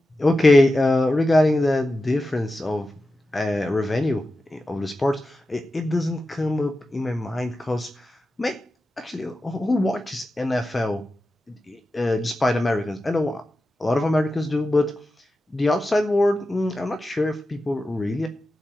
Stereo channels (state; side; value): normal; both; correlation 0.92